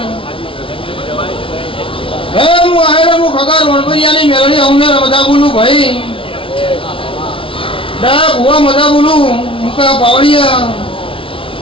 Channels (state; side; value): late; right; 0.25 ms